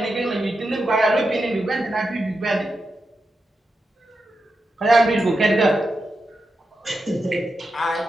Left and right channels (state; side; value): normal; both; correlation 0.88